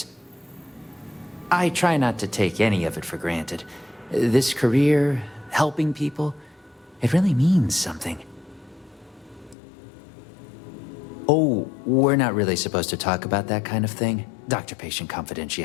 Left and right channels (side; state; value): right; drops out; at 9.6 s